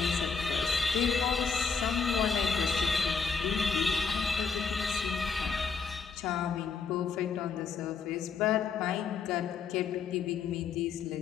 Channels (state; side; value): quieter; right; 5.6 dB